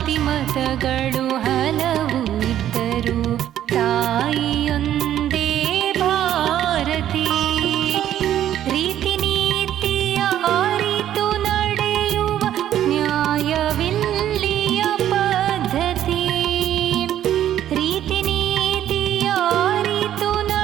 ಮತಗಳು ಹಲವು ಇದ್ದರೂ ತಾಯಿಯೊಂದೇ ಭಾರತಿ. ರೀತಿ ನೀತಿಯ ಅರಿತು ನಡೆಯುವ ನ್ಯಾಯವಿಲ್ಲಿಯ ಪದ್ಧತಿ. ರೀತಿ ನೀತಿಯ ಅರಿತು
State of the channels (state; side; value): quieter; left; 11.4 dB